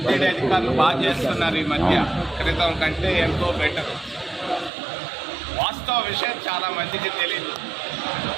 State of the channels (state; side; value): drops out; left; at 4.7 s